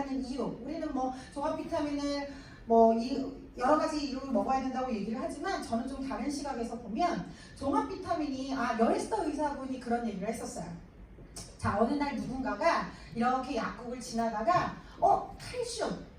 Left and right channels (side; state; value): both; identical; correlation 1.00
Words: 이유, 우리는 뭐 종합 비타민을 뭐 여러 가지 이유로 먹어야 된다고 얘기를 하지만 저는 좀 다른 시각에서 보면 종합 비타민이 여에스터 의사분이 그런 얘기를 했었어요. 자, 어느 날 누군가가 이렇게 약국을 지나다가 칼슘